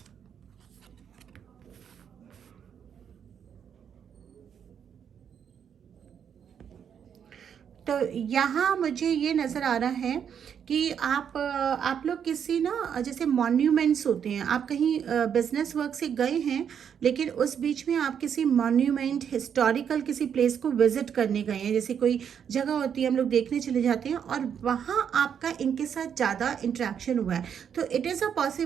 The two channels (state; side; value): quieter; left; 8.0 dB